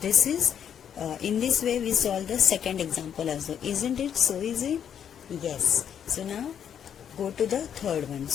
is in this way we solve the second example also. Isn't it so easy? Yes. So now go to the third one.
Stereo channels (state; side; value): quieter; right; 8.7 dB